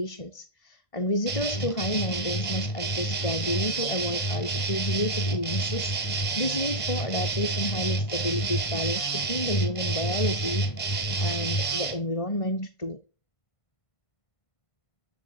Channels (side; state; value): right; late; 1.5 ms